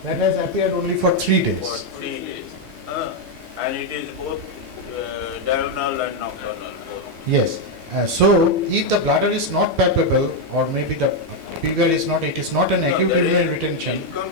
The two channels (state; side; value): late; right; 1.5 ms